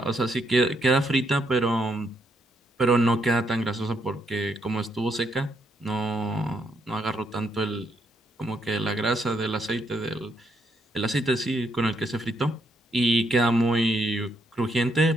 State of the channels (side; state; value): both; normal; correlation 0.75